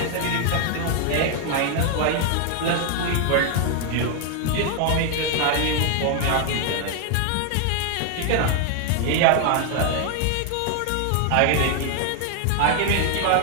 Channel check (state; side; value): different; both; correlation 0.00